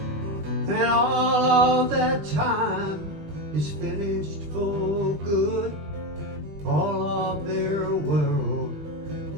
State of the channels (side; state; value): left; late; 20 ms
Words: And all of that time is finished for good. All of their world,